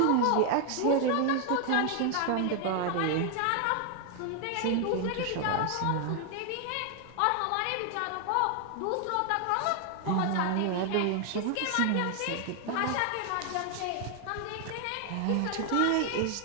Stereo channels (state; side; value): different; both; correlation 0.00